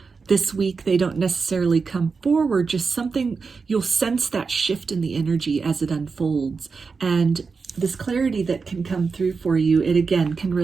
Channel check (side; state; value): left; quieter; 4.9 dB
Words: this week they don't necessarily come forward, just something, you'll sense that shift in the energy as it unfolds. And this clarity that can come through for you, it again can